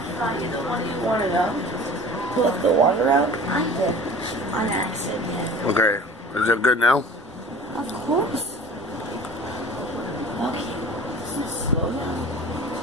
What do you want to know? Put the water out? I did. On accident. Okay. Is it good now? Of course. Okay. Slow down.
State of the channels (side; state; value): both; normal; correlation 0.41